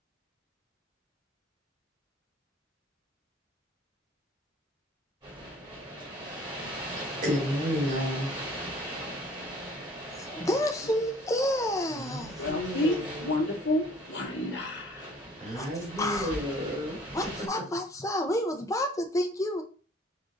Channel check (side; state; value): both; normal; correlation 0.54